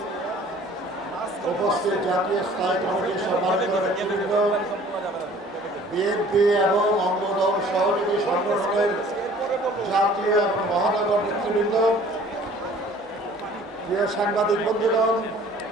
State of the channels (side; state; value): both; normal; correlation 0.51